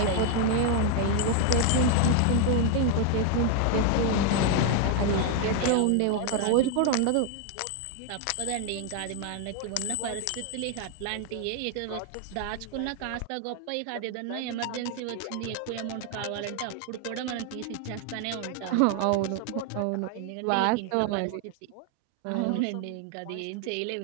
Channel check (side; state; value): both; different; correlation 0.00